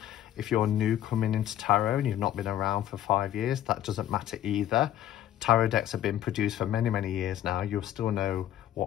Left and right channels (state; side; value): quieter; right; 11.9 dB